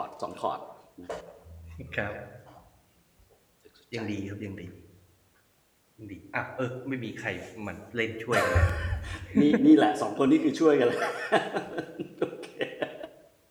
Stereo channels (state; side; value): identical; both; correlation 1.00